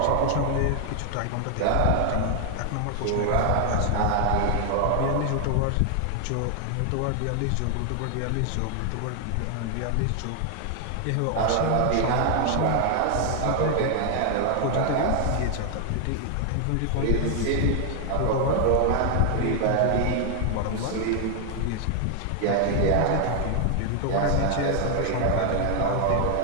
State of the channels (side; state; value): both; different; correlation 0.00